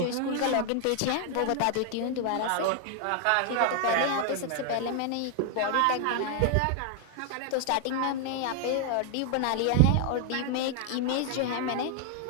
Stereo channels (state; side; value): different; both; correlation 0.00